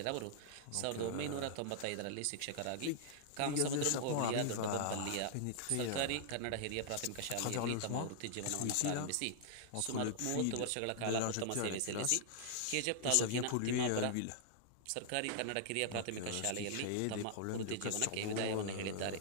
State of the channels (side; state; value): both; different; correlation -0.01